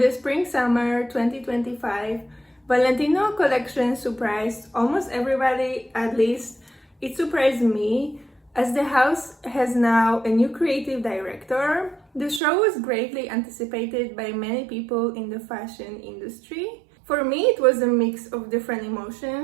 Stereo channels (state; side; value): drops out; left; at 12.4 s